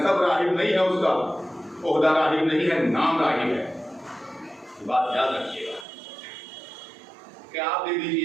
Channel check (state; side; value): drops out; left; at 5.9 s